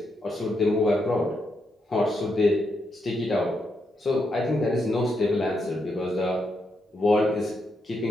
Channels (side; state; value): both; normal; correlation 0.81